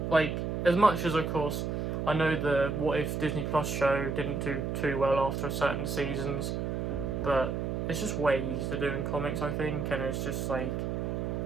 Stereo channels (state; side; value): noise; right; hum, 1 dB below the sound